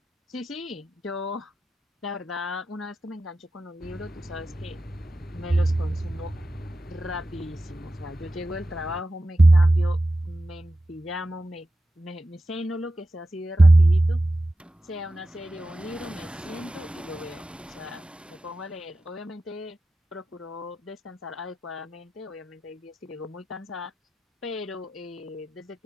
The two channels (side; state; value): both; normal; correlation 0.93